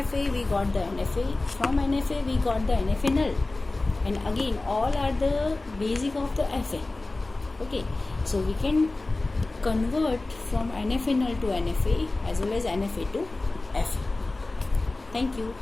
we got the NFA, from NFA we got the NFA null, and again all are the basic of the FA. Okay, so we can convert from NFA null to NFA as well as NFA to FA. Thank you.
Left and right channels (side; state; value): right; quieter; 3.1 dB